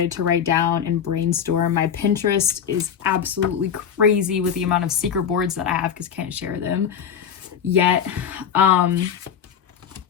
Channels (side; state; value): right; quieter; 8.1 dB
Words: to write down and brainstorm. My Pinterest is absolutely crazy with the amount of secret boards that I have because I can't share them yet. But